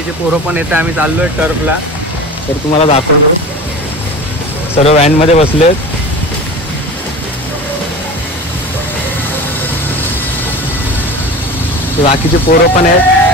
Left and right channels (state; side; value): normal; both; correlation 0.34